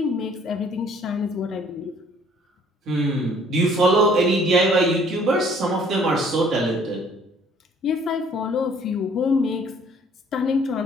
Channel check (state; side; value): normal; both; correlation 0.58